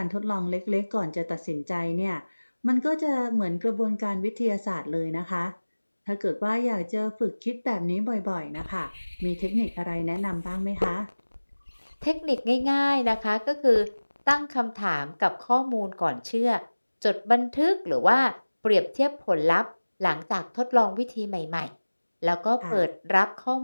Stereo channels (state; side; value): inverted; both; correlation -1.00